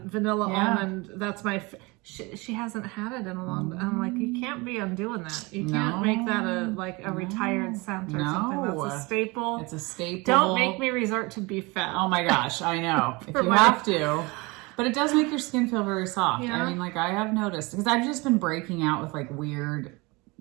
vanilla almond. That's my. She hasn't had it in a long time. I'm like, you can't be undoing that. You can't make that a retired scent or something. That's a staple. It's a staple. Don't make me resort to beef fat. Oh my gosh, I know. If you have to. But it does make your skin feel very soft. Yeah. I mean, I have noticed. Because I've just been breaking out with weird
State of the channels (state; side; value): quieter; left; 25.4 dB